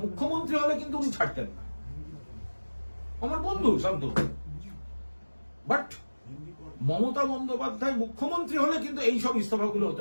মুখ্যমন্ত্রী হলে কিন্তু উনি ছাড়তেন না। আমার বন্ধু শান্তনু, বাট মমতা বন্দ্যোপাধ্যায় মুখ্যমন্ত্রী হলে কিন্তু এইসব ইস্তফাগুলো হতো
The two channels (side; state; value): both; inverted; correlation -1.00